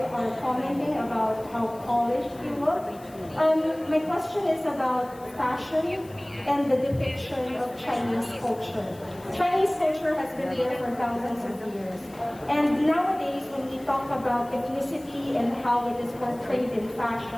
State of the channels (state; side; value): noise; left; hiss, 24 dB below the sound